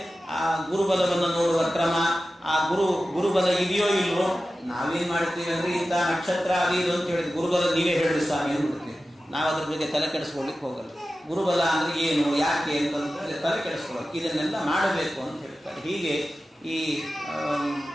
ಆ ಗುರುಬಲವನ್ನು ನೋಡುವ ಕ್ರಮ, ಆ ಗುರುಬಲ ಇದೆಯೋ ಇಲ್ವೋ, ನಾವೇನ್ ಮಾಡ್ತೀವಿ ಅಂದ್ರೆ ಇಂಥ ನಕ್ಷತ್ರ ಅದು ಇದು ಅಂತ ಹೇಳಿದ್ರೆ ಗುರುಬಲ ನೀವೇ ಹೇಳಿ ಸ್ವಾಮಿ ಅಂದ್ಬಿಡ್ತೀವಿ. ನಾವು ಅದ್ರ ಬಗ್ಗೆ ತಲೆ ಕೆಡಿಸ್ಕೊಳ್ಳಿಕ್ಕೆ ಹೋಗಲ್ಲ. ಗುರುಬಲ ಅಂದ್ರೆ ಏನು, ಯಾಕೆ ಅಂತ ತಲೆ ಕೆಡಿಸ್ಕೊಳ್ಳೋಕೆ ಇದನ್ನೆಲ್ಲ ಮಾಡಬೇಕು ಅಂತ ಹೇಳ್ತಾರೆ. ಹೀಗೆ ಈ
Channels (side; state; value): both; normal; correlation 0.94